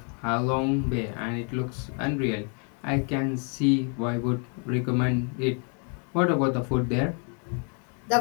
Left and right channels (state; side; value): quieter; right; 37.2 dB